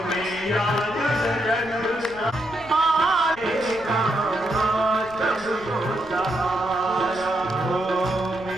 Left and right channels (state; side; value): noise; left; rumble, 21 dB below the sound